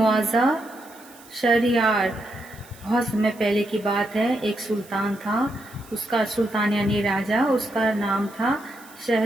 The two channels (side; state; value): right; noise; hiss, 23 dB below the sound